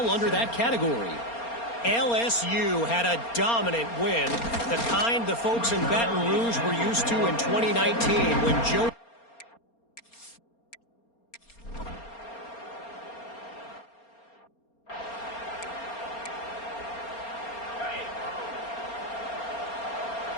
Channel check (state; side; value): late; right; 4.3 ms